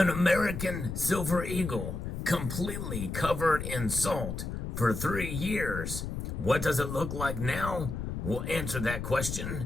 American silver eagle completely covered in salt for 3 years. What does it look like now? We'll answer that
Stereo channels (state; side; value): noise; left; rumble, 5 dB below the sound